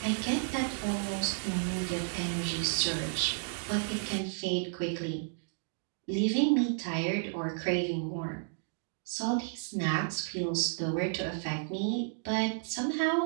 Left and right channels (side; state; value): left; silent; digital silence